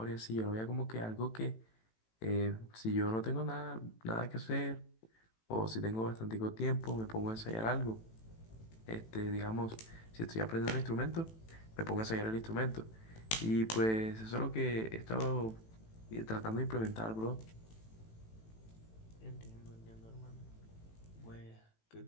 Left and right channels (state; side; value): late; right; 18 ms